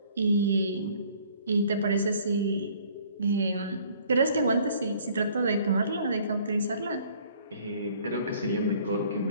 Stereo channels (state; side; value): inverted; both; correlation -0.57